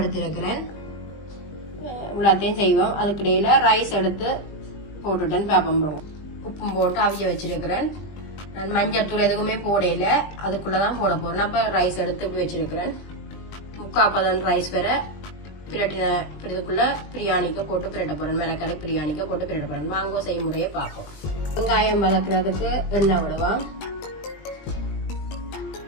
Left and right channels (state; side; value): late; right; 20 ms